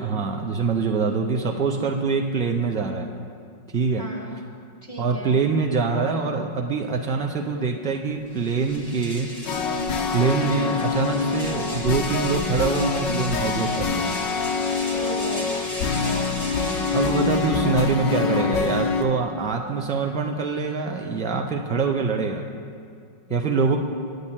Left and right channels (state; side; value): late; right; 5.4 ms